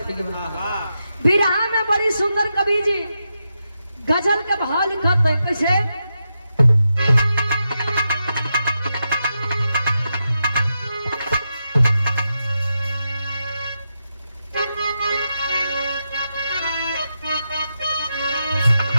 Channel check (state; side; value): inverted; both; correlation -0.87